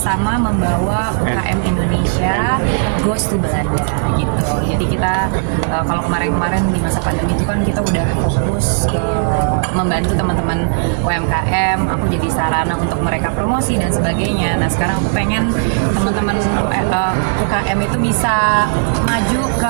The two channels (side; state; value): left; silent; digital silence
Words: membawa UKM Indonesia goes to Belanda gitu. Jadi kita kalau kemarin-kemarin di masa pandemi itu kan kita udah fokus ke membantu teman-teman UMKM. Aku jadi sarana untuk mereka promosi dan sebagainya. Nah sekarang aku pengen teman-teman UKM itu bisa maju